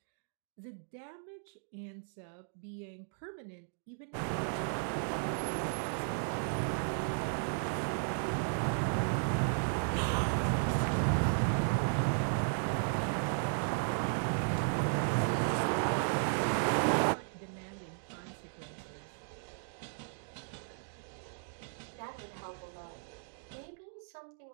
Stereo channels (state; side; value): silent; left; digital silence